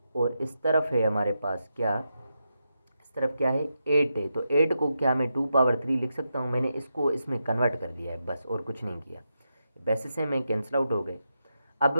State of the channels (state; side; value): inverted; both; correlation -0.86